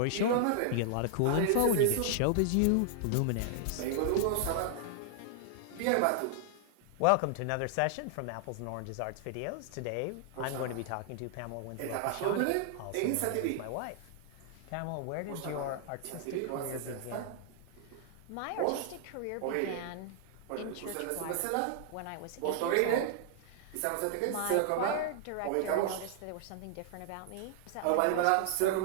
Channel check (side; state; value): both; different; correlation -0.01